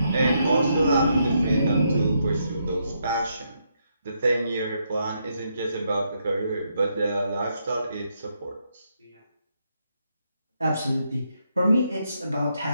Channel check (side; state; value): both; inverted; correlation -0.78